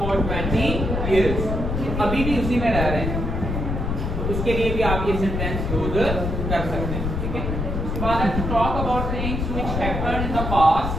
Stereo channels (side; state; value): left; noise; rumble, 2 dB below the sound